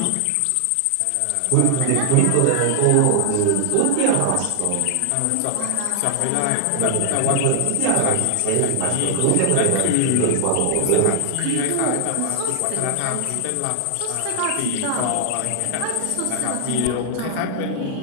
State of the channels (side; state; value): both; different; correlation 0.00